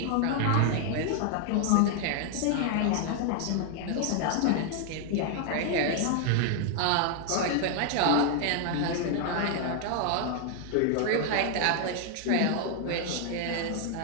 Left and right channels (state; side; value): different; both; correlation 0.00